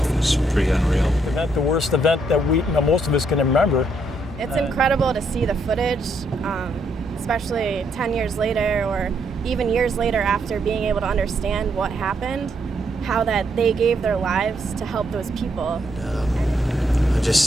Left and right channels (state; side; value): normal; both; correlation 0.75